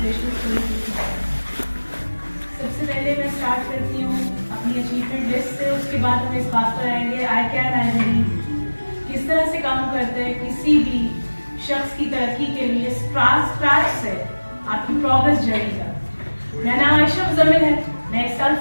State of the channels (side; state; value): both; inverted; correlation -1.00